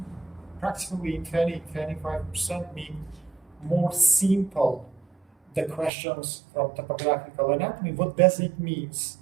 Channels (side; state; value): left; drops out; at 5.9 s